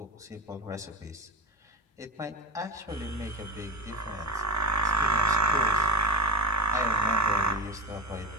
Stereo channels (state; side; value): normal; both; correlation 0.29